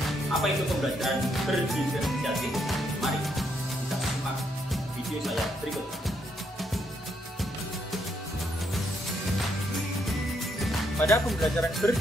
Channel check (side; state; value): both; normal; correlation 0.75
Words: Apa itu pembelajaran berdiferensiasi? Mari kita simak video saya berikut. Pada pembelajaran